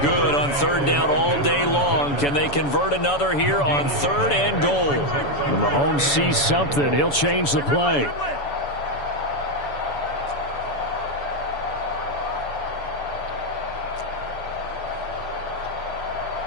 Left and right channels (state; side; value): late; right; 7.0 ms